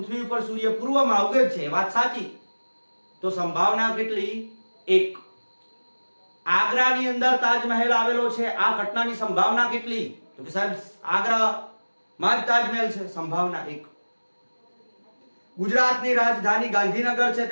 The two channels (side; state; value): both; inverted; correlation -1.00